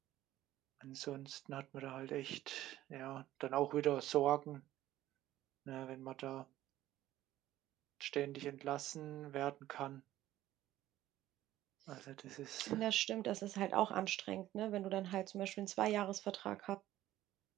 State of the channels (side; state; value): left; quieter; 14.3 dB